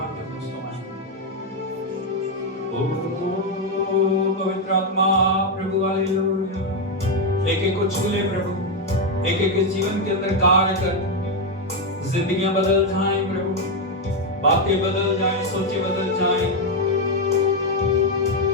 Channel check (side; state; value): both; normal; correlation 0.04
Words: के ओ पवित्र आत्मा प्रभु, हालेलुया। एक एक को छू ले प्रभु, एक एक के जीवन के अंदर कार्य कर। जिंदगियां बदल जाएं प्रभु, बातें बदल जाएं, सोचें बदल जाएं।